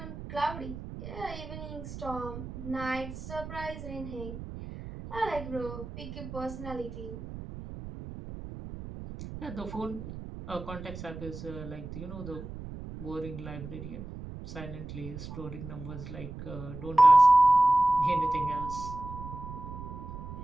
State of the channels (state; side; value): noise; right; rumble, 10 dB below the sound